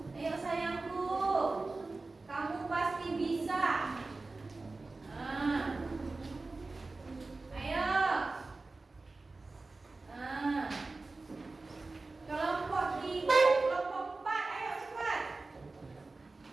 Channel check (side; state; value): left; quieter; 3.5 dB